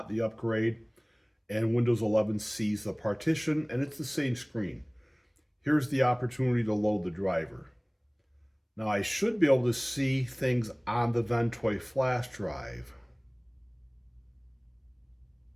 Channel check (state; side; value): identical; both; correlation 1.00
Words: the upgrade. And Windows 11 sees the partition, and it's the same screen. Here's the opportunity to load the driver. Now I should be able to see things on the Ventoy flash drive.